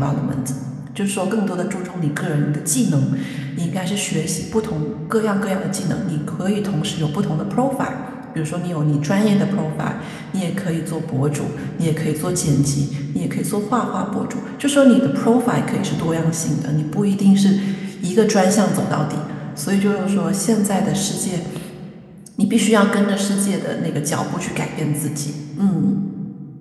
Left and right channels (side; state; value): both; identical; correlation 1.00